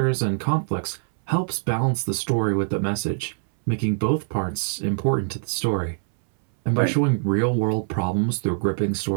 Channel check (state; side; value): silent; left; 63 dB below the other